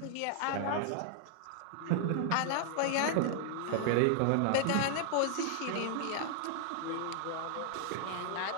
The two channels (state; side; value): different; both; correlation -0.01